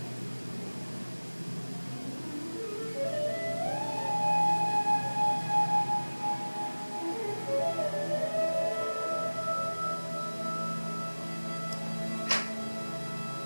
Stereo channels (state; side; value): inverted; both; correlation -1.00